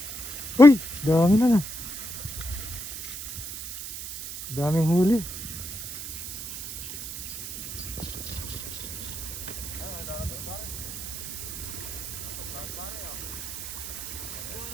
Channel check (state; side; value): noise; right; hiss, 8 dB below the sound